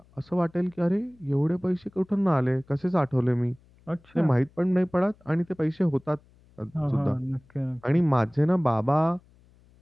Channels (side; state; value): left; noise; hum, 30 dB below the sound